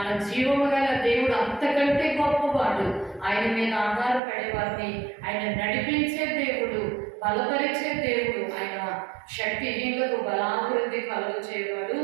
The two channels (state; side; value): drops out; left; at 4.2 s